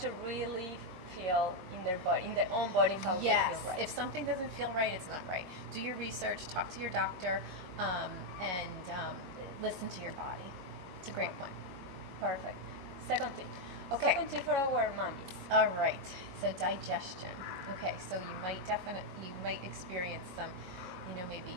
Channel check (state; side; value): late; left; 22 ms